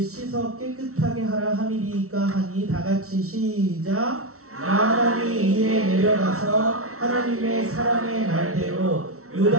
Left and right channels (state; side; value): late; left; 0.63 ms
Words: 씻어 깨끗하게 하라 함이리이까 하니 다같이 시작. 나아만이 이에 내려가서 하나님의 사람의 말대로